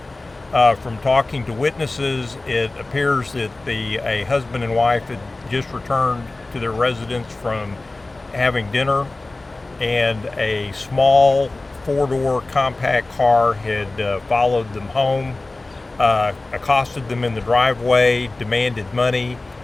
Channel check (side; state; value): right; quieter; 3.1 dB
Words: From talking to witnesses, it appears that a husband and wife had just returned to their residence from having dinner, and a small four-door compact car had followed them home, accosted them in the driveway, demanded money,